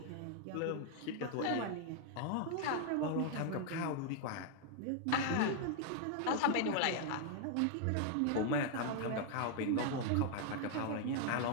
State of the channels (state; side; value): different; both; correlation 0.00